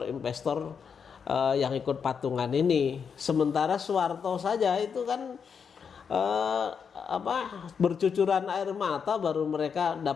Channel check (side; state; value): right; quieter; 6.5 dB